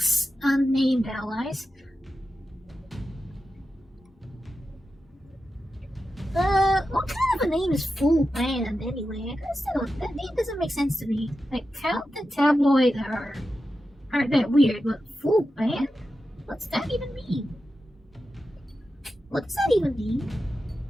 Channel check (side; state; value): both; normal; correlation 0.91